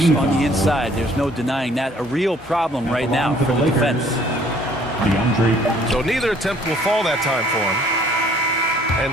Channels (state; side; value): normal; both; correlation 0.59